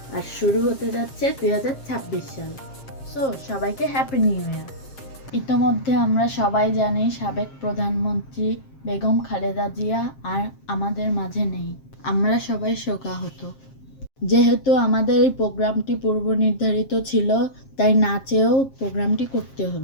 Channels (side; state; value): right; late; 7.5 ms